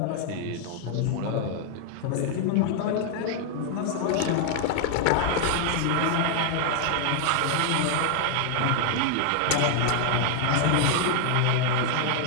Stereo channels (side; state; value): both; different; correlation 0.00